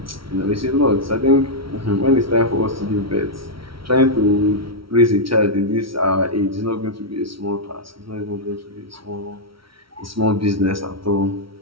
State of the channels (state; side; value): late; left; 0.75 ms